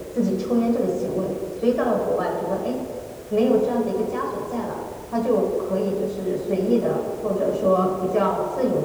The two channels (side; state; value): both; identical; correlation 1.00